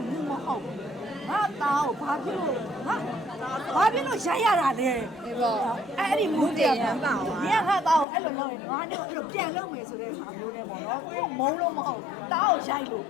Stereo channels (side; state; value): right; drops out; at 8.1 s